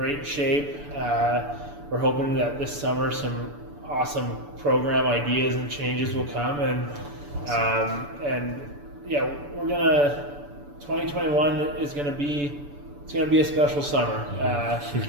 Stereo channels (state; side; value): late; left; 6.9 ms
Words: shape. We're hoping that this summer some awesome program ideas and changes will come, and yeah, 2021 is gonna be a special summer